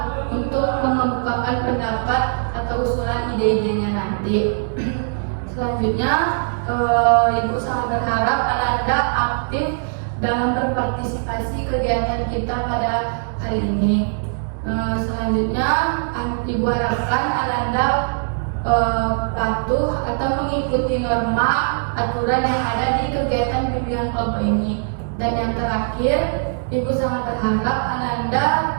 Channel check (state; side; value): silent; left; digital silence